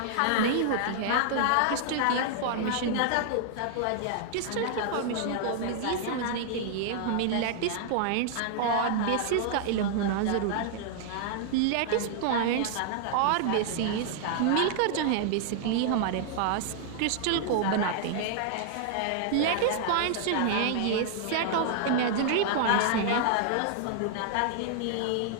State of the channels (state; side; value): different; both; correlation -0.01